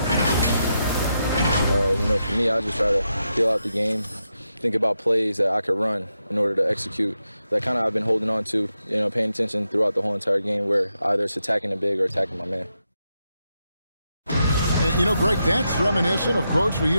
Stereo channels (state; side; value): inverted; both; correlation -0.85